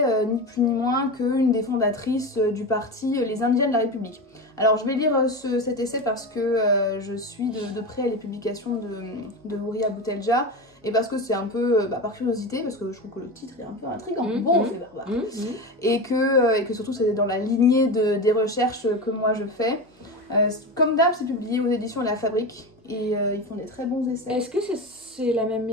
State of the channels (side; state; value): both; normal; correlation 0.23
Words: ni plus ni moins qu'une des fondatrices du parti Les Indiens de la République. Alors je vais lire cet essai parce que je suis de près les publications de Houria Boutelja et parce que c'est un peu par curiosité, parce que je trouve que le titre est un peu intriguant, Beauf et barbare, et que surtout c'est dans la lignée des recherches que moi je fais. Comme d'hab, c'est publié aux éditions La Fabrique et ils font des très bons essais. Est-ce que c'est la même